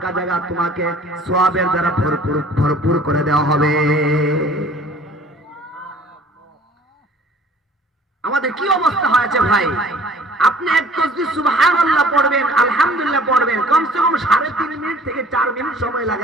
জায়গা তোমাকে সওয়াবের দ্বারা ভরপুর করে দেওয়া হবে। আমাদের কি অবস্থা হয়েছে ভাই? আপনি এক তাসবিহ সুবহানাল্লাহ পড়বেন, আলহামদুলিল্লাহ পড়বেন, কমসে কম 3.5 মিনিট থেকে 4 মিনিট সময়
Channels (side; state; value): both; normal; correlation 0.51